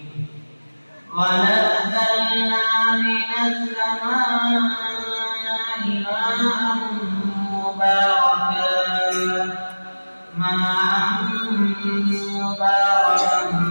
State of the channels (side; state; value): both; inverted; correlation -1.00